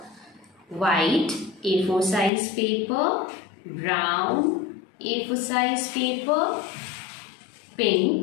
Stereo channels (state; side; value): drops out; right; at 2.3 s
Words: white A4 size paper, brown A4 size paper,